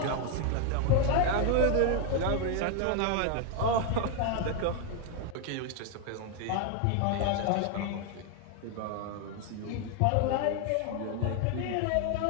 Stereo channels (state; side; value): different; both; correlation 0.01